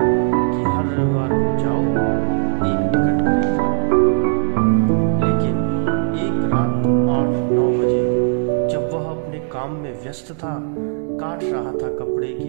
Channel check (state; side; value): silent; left; digital silence